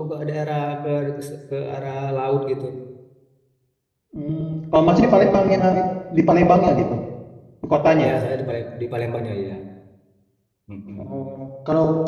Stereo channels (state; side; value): identical; both; correlation 1.00